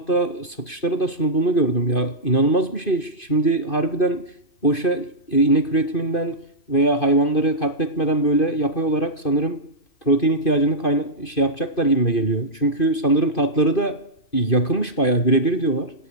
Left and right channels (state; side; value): late; right; 2.5 ms